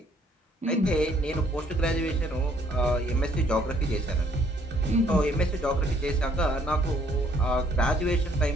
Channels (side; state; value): both; normal; correlation 0.64